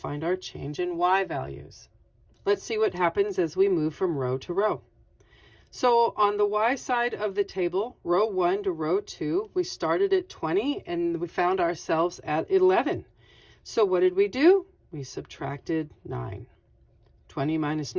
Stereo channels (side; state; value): both; identical; correlation 1.00